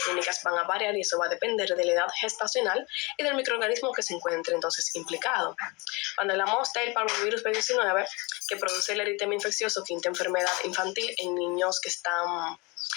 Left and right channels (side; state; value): right; quieter; 27.1 dB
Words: clínicas van a variar y eso va a depender de la edad gestacional y del microorganismo que se encuentre entonces implicado. Cuando hablamos del parvovirus B19, que produce el eritema infeccioso, quinta enfermedad infantil en niños que están